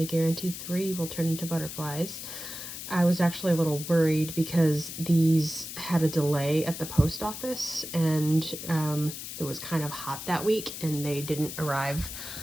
guarantee 3 will turn into butterflies. I was actually a little worried because these had a delay at the post office and it was kind of hot that week and they didn't arrive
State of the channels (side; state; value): left; noise; hiss, 9 dB below the sound